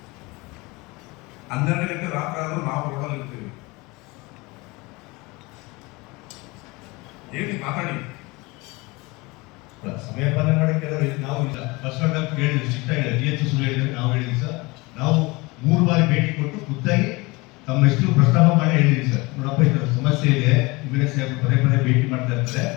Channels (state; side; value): quieter; right; 24.2 dB